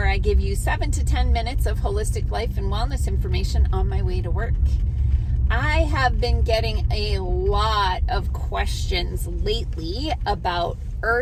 I give you 7 to 10 minutes of holistic life and wellness information on my way to work. I have been getting a lot of questions lately about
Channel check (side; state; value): both; identical; correlation 1.00